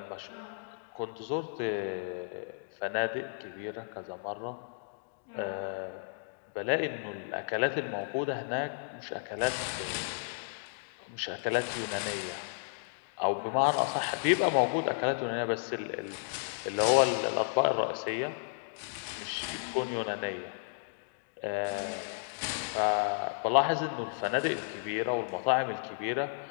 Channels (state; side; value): silent; right; digital silence